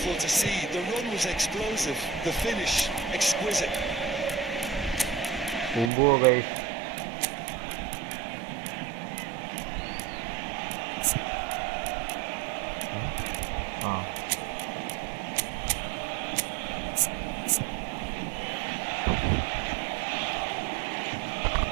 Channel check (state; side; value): drops out; left; at 5.9 s